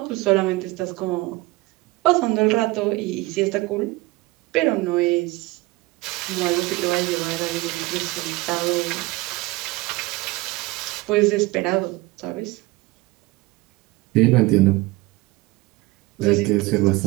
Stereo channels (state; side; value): quieter; left; 21.0 dB